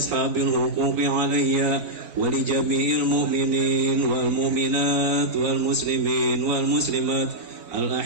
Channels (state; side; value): late; left; 3.9 ms